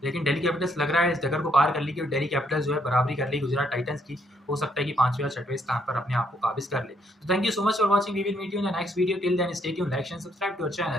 लेकिन दिल्ली कैपिटल्स लग रहा है इस डगर को पार कर ली कि दिल्ली कैपिटल्स जो है बराबरी कर ली गुजरात टाइटंस की। हो सकता है कि 5वें या 6वें स्थान पर अपने आप को काबिज कर ले। तो thank you so much for watching, we will meet you in the next video. Till then stay tune, like share subscribe to our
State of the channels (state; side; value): normal; both; correlation 0.71